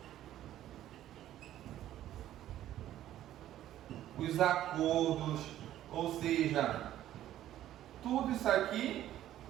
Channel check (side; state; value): left; quieter; 12.7 dB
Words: os acordos, ou seja, tudo isso aqui